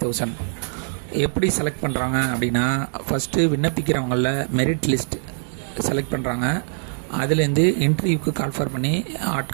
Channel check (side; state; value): left; silent; digital silence